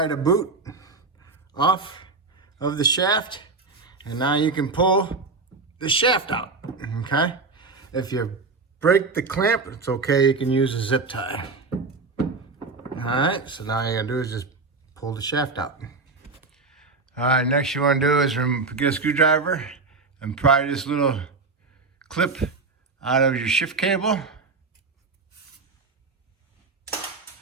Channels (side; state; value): left; quieter; 4.1 dB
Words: the boot off of the shaft, and now you can pull the shaft out, okay? If you break the clamp, it's okay, you can use a zip tie. All right, so now all you gotta do is just pull the shaft out. All right, next you wanna do is get a screwdriver and pry this little clip out of your shift cable.